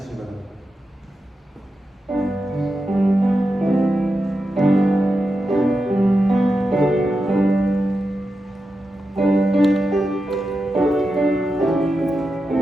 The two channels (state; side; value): normal; both; correlation 0.89